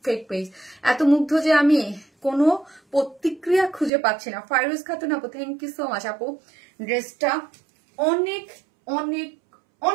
ফেক পেজ। এত মুগ্ধ যে আমি কোনো প্রতিক্রিয়া খুঁজে পাচ্ছি না। ফাইরুজ খাতুন আপু, থ্যাংক ইউ সো মাচ আপু। ড্রেসটা অনেক অনেক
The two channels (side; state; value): left; drops out; at 3.9 s